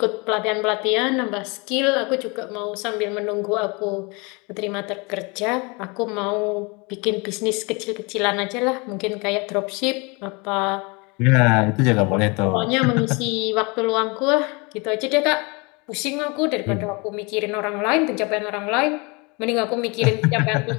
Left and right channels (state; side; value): quieter; right; 28.9 dB